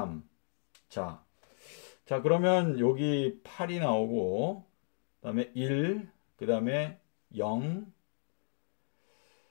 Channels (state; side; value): silent; right; 55 dB below the other